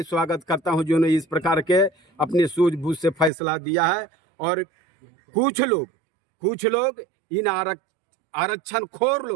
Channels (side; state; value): left; drops out; at 3.3 s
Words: स्वागत करता हूं जिन्होंने इस प्रकार के अपनी सूझबूझ से फैसला दिया है। और कुछ लोग इन आरक्षण खोर